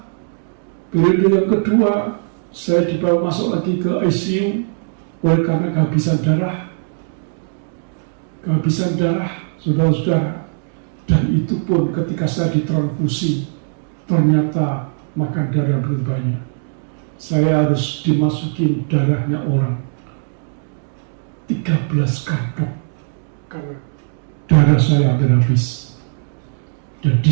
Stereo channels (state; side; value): silent; left; digital silence